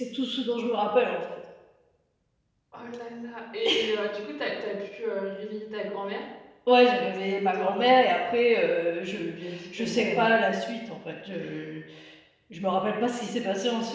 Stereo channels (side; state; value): both; identical; correlation 1.00